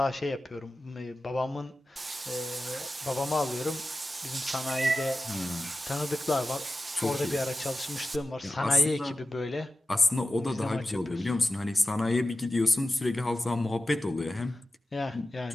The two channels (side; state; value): both; normal; correlation 0.94